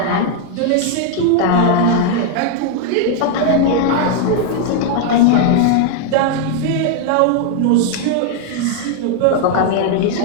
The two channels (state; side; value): different; both; correlation 0.00